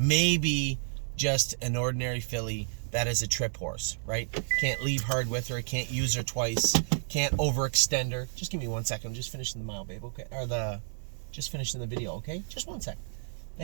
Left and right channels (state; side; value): silent; left; 57 dB below the other